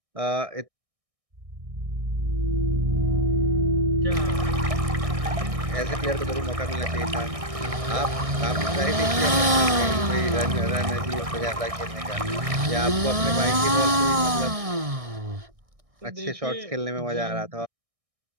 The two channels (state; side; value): late; left; 1.6 ms